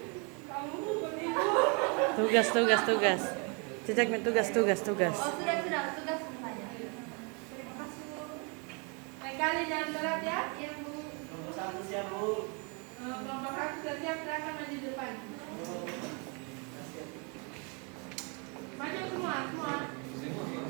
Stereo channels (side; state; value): left; quieter; 34.2 dB